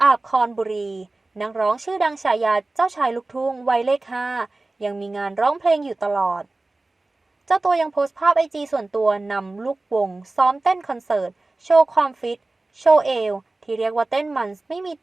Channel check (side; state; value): left; quieter; 3.1 dB